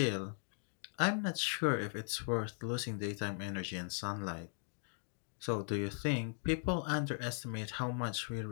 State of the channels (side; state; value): right; silent; 52 dB below the other